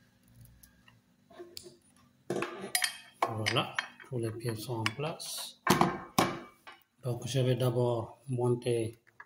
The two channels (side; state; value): both; identical; correlation 1.00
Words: Voilà, tous les pieds sont en place. Donc je vais d'abord monter